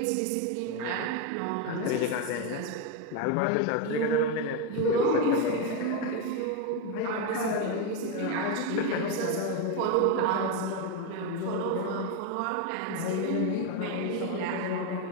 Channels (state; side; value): different; both; correlation 0.03